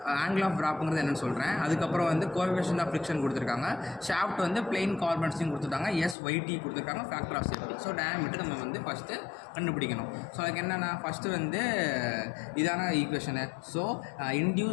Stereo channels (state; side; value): drops out; right; at 6.2 s